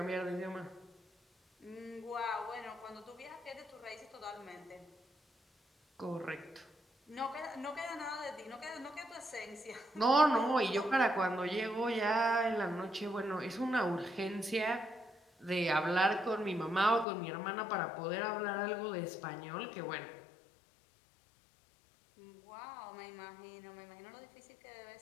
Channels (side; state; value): right; drops out; at 17.1 s